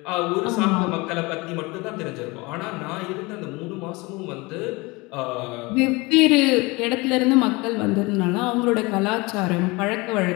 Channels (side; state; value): right; quieter; 24.6 dB